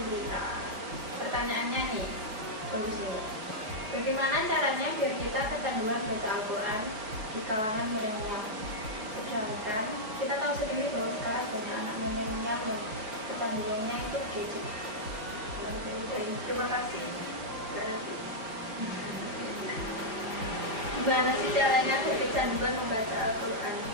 Pertanyaannya nih, bagus nih. Bagaimana caranya biar kita kecanduan baca Al-Quran di kalangan milenial? Sedangkan kita tahu sendiri bahwa sekarang banyak anak milenial yang kecanduannya itu gadget. Terima kasih. Gimana sih caranya biar kecanduan membaca Al-Quran?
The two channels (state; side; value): late; left; 4.6 ms